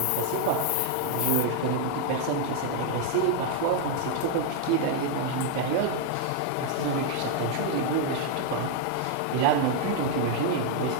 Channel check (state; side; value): different; both; correlation 0.00